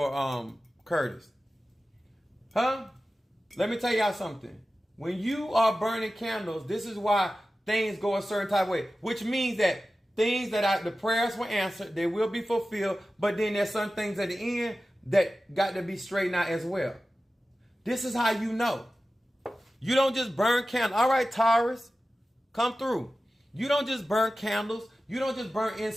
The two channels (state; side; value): normal; both; correlation 0.95